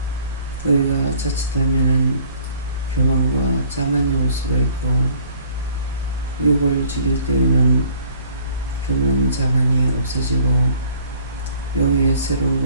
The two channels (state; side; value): inverted; both; correlation -0.57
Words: 너희가 자칫하면은 교만과 자만이 올 수가 있고 육을 죽일 때에는 교만, 자만이 없어지고 영의 새로운